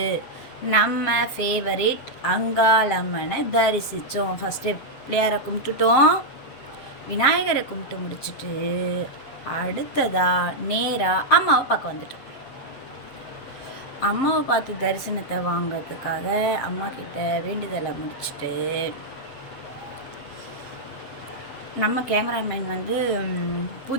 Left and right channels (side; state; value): right; late; 7.5 ms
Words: நம்ம ஃபேவரேட் அங்காளம்மனை தரிசித்தோம். ஃபஸ்ட்டு பிள்ளையாரை கும்பிட்டுட்டோம், விநாயகரை கும்பிட்டு முடிச்சுட்டு அடுத்ததாக நேராக அம்மாவை பார்க்க வந்துட்டோம். அம்மாவை பார்த்து தரிசனத்தை வாங்கிறதுக்காக அம்மா கிட்ட வேண்டுதலை முடிச்சுட்டு நம்ம கேமராமேன் வந்து